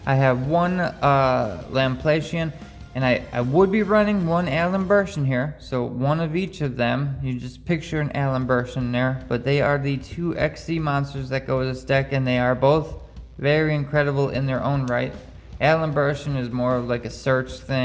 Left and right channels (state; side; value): identical; both; correlation 1.00